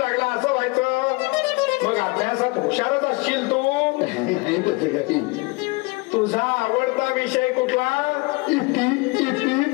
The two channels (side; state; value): right; quieter; 26.0 dB